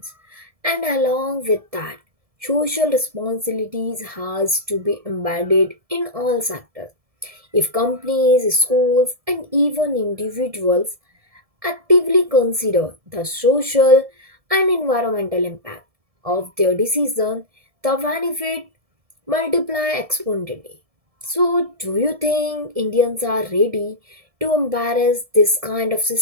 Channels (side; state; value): left; late; 1.7 ms